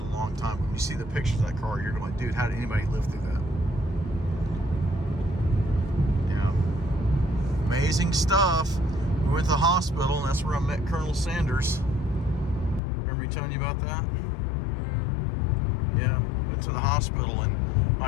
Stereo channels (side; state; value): right; drops out; at 12.8 s